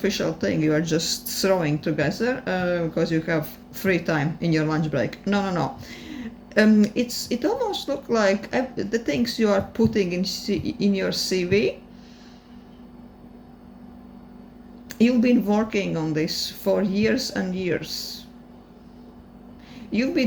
thing you are just throwing together because you have free time in your lunch break. No. It almost looks like the things you are putting in your CV. You've been working on this for years and years. You've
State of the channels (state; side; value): identical; both; correlation 1.00